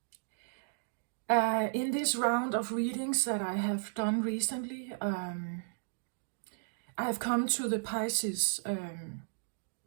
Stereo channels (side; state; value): left; silent; digital silence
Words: in this round of readings that I have done recently, I have come to the Pisces,